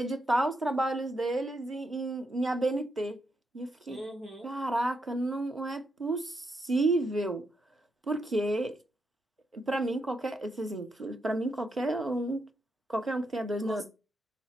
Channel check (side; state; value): both; normal; correlation 0.81